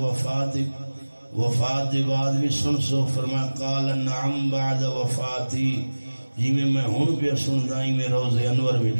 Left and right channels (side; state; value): both; inverted; correlation -1.00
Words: وفات بعد بھی سن سو فرمایا قال نعم بعد وفاتی جی میں ہون پہ سن دائی میں روز انور